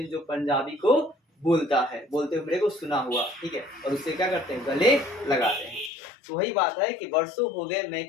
जो पंजाबी को बोलता है, बोलते हुए मेरे को सुना हुआ, ठीक है, और उससे क्या करते हैं, गले लगाते हैं। तो वही बात है कि वर्षों हो गए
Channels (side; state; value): right; drops out; at 5.9 s